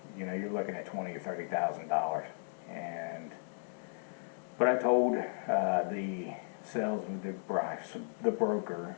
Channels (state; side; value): silent; right; digital silence